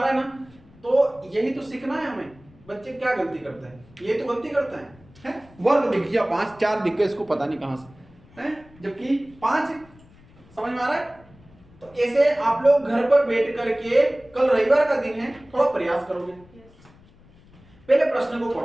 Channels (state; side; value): noise; left; rumble, 26 dB below the sound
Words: है ना? तो यही तो सीखना है हमें। बच्चे क्या गलती करते हैं? ये तो गलती करते हैं, वर्ग दिख गया 5, 4 दिख गए, इसको पता नहीं कहां से है, जबकि 5 है। समझ में आ रहा है? तो ऐसे आप लोग घर पर बैठ करके, कल रविवार का दिन है, थोड़ा प्रयास करोगे, पहले प्रश्न को